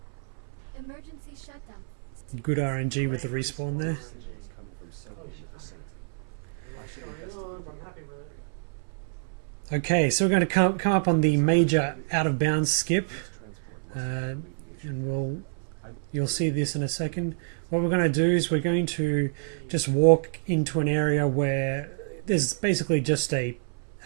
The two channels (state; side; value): silent; left; 60 dB below the other